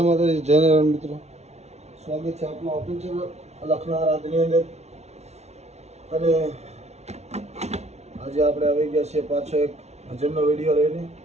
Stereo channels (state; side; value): late; left; 0.31 ms